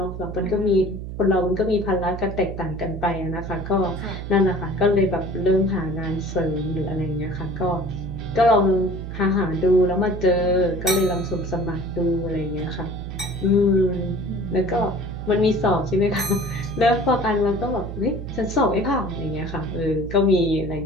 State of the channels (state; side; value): noise; right; hum, 8 dB below the sound